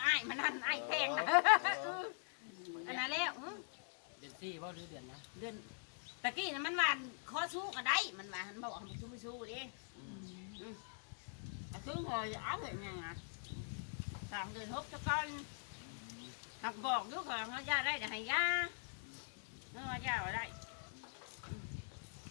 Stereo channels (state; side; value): silent; right; digital silence